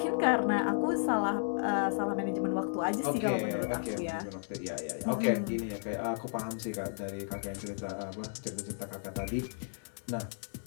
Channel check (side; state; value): right; silent; 55 dB below the other